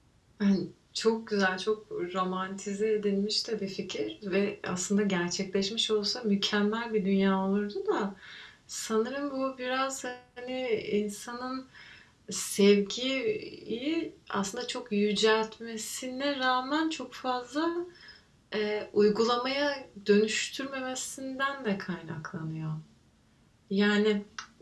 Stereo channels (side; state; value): both; identical; correlation 1.00